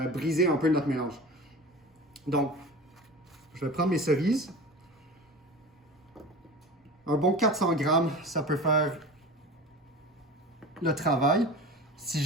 briser un peu notre mélange. Donc, je vais prendre mes cerises. Un bon 400 grammes, ça peut faire le travail. Si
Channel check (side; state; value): both; normal; correlation 0.34